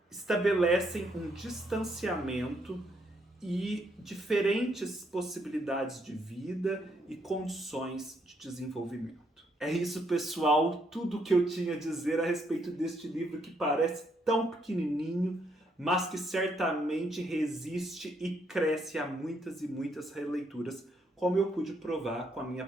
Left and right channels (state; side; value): normal; both; correlation 0.74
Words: estabelecem um distanciamento e diferentes possibilidades de vida e condições de desenvolvimento. É isso, pessoal, tudo o que eu tinha a dizer a respeito deste livro que parece tão pequenininho, mas que certamente resiste e cresce a muitas e muitas releituras, como eu pude provar com a minha